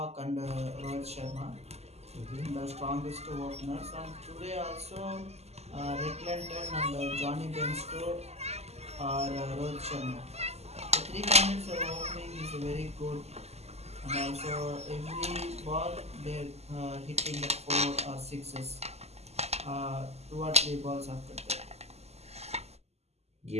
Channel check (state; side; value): late; left; 0.30 ms